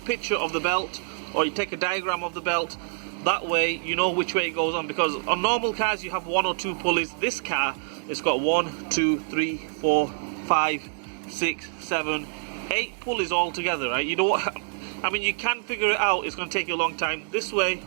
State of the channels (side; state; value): left; silent; digital silence